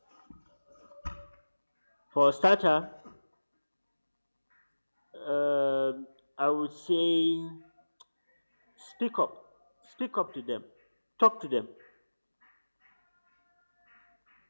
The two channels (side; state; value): both; inverted; correlation -1.00